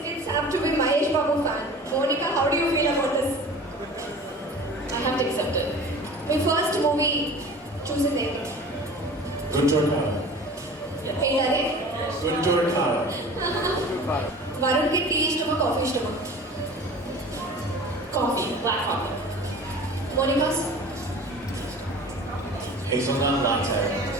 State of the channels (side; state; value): both; normal; correlation 0.40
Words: kids have to be Mahesh Babu fan. Monica, how do you feel about this? I have to accept it. మీ first movie చూసింది ఏంటి? గుంటూరు కారం. ఏంటది? గుంటూరు కారం. వరుణ్కి టీ ఇష్టమా coffee ఇష్టమా? Coffee, black coffee. Monika's? Hazelnut latte